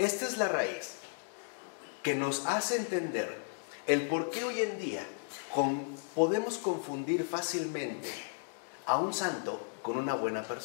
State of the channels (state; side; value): silent; right; digital silence